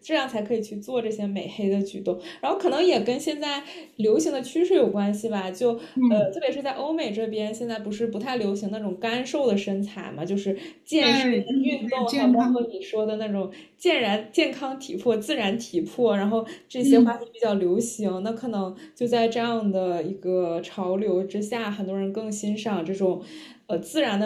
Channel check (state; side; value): identical; both; correlation 1.00